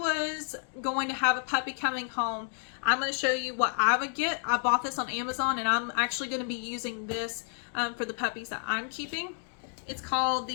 going to have a puppy coming home, I'm going to show you what I would get. I bought this on Amazon, and I'm actually going to be using this for the puppies that I'm keeping. It's called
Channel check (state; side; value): silent; right; 58 dB below the other